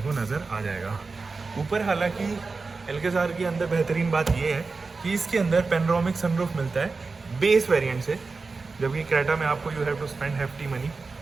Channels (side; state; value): left; quieter; 4.1 dB